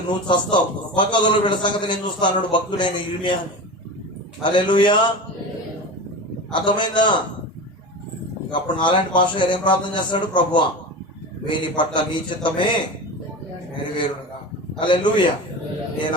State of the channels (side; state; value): both; normal; correlation 0.28